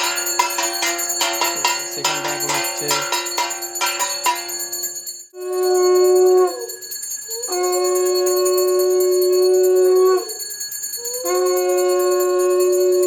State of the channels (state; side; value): identical; both; correlation 1.00